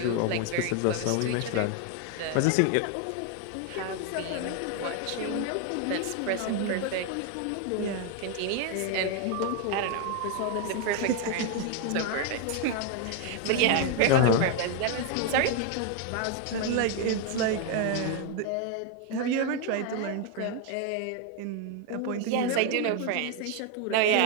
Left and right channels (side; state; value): both; different; correlation 0.01